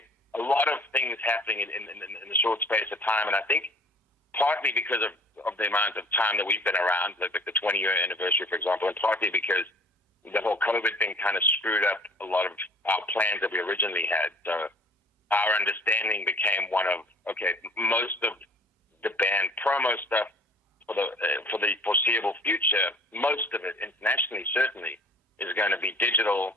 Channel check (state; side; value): normal; both; correlation 0.50